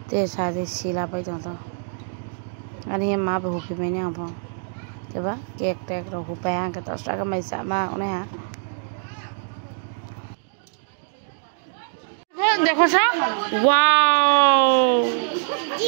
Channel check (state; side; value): silent; left; digital silence